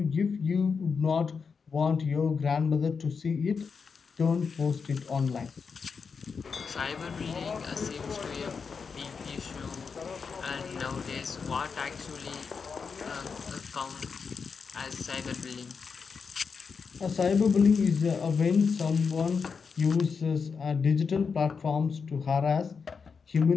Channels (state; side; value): quieter; right; 5.5 dB